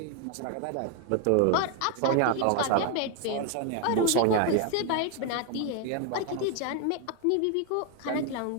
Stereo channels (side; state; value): both; different; correlation 0.01